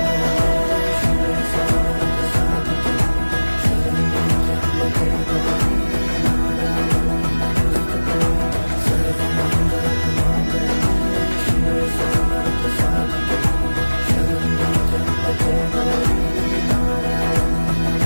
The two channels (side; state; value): both; inverted; correlation -1.00